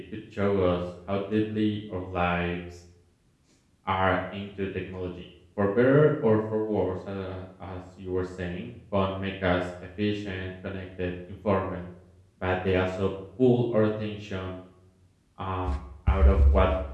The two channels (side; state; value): both; identical; correlation 1.00